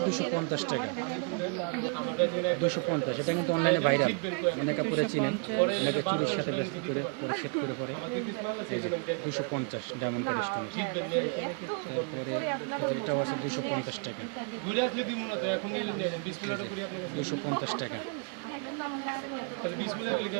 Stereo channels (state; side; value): quieter; left; 36.1 dB